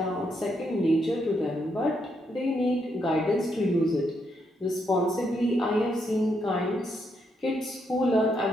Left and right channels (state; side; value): normal; both; correlation 0.78